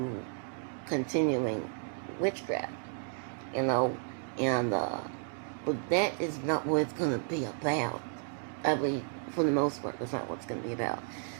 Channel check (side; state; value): left; silent; 56 dB below the other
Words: continuing witchcraft, and but that is not what it's going to be about. I mean, for the most part, that's not what it's going to be about.